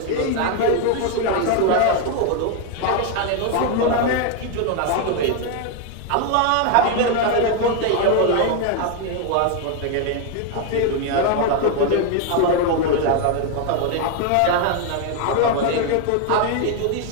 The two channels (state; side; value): different; both; correlation 0.01